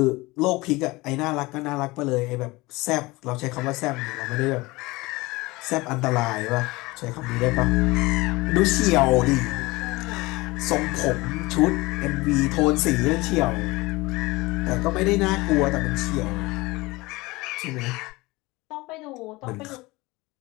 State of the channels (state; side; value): quieter; right; 22.0 dB